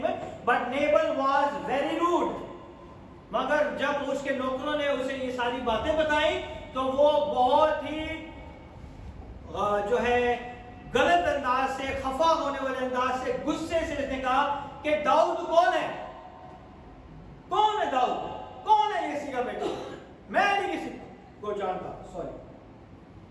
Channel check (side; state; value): both; identical; correlation 1.00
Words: but Nabal was very rude. मगर जब उसके नौकरों ने उसे ये सारी बातें बताई तो वो बहुत ही जो है गलत अंदाज से, खफा होने वाले अंदाज से, गुस्से से इसने कहा कि दाऊद कौन है, कौन है दाऊद, कौन है यिसी का बेटा, मैं नहीं किसी को जानता. Sorry.